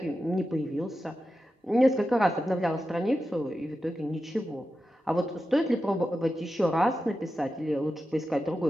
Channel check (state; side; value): normal; both; correlation 0.91